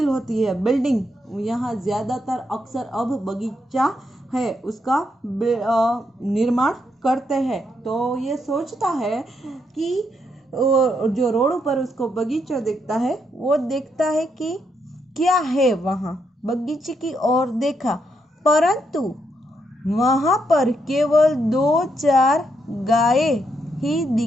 होती है बिल्डिंग, यहाँ ज़्यादातर अक्सर अब बगीचा है उसका निर्माण करते हैं। तो ये सोचता है कि जो रोड पर उसको बगीचा दिखता है वो देखता है कि क्या है वहाँ। बगीचे की ओर देखा परंतु वहाँ पर केवल 2-4 गायें ही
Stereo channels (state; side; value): normal; both; correlation 0.78